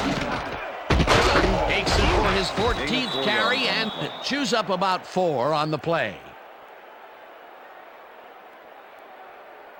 Takes it for his 14th carry and chews up about 4 on the play.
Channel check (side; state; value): both; identical; correlation 1.00